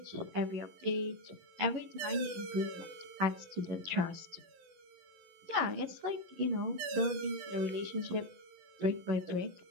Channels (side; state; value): left; late; 11 ms